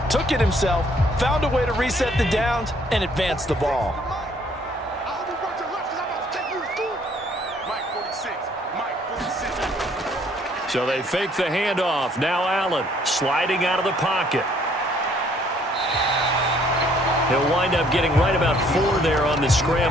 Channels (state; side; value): normal; both; correlation 0.63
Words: Took it himself, found a way to reset the downs, and advance the ball. So they fake the handoff. Now Allen sliding out of the pocket. He'll wind up getting right about 4 there on the